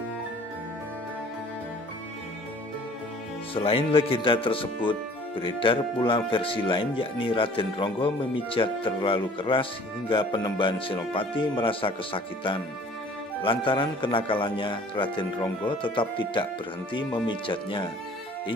Selain legenda tersebut, beredar pula versi lain yakni Raden Ronggo memijat terlalu keras hingga Panembahan Senopati merasa kesakitan. Lantaran kenakalannya, Raden Ronggo tetap tidak berhenti memijatnya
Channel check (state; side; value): normal; both; correlation 0.51